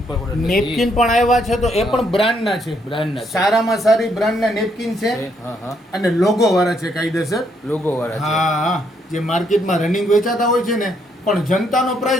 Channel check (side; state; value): both; normal; correlation 0.73